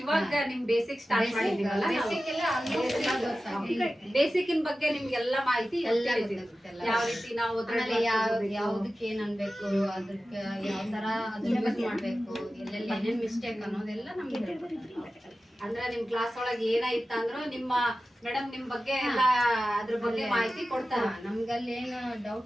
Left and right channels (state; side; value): normal; both; correlation 0.94